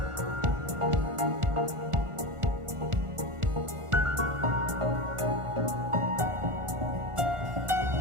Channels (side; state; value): left; late; 1.4 ms